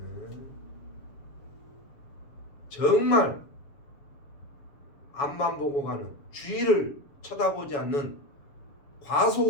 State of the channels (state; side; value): late; right; 7.1 ms